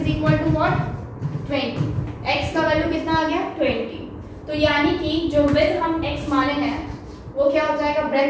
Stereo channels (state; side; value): identical; both; correlation 1.00